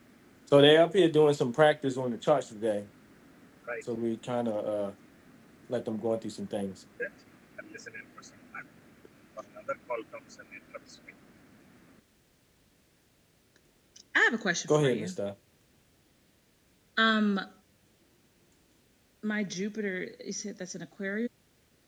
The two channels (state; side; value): identical; both; correlation 1.00